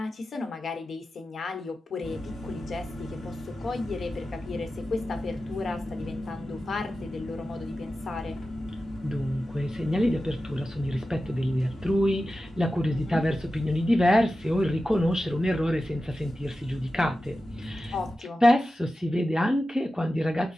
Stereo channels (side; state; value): both; normal; correlation 0.93